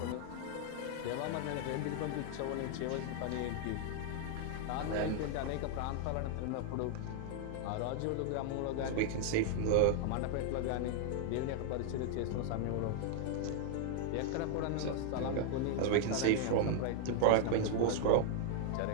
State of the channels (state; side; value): different; both; correlation -0.01